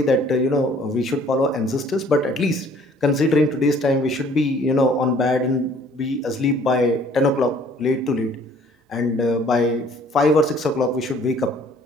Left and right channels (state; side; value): normal; both; correlation 0.57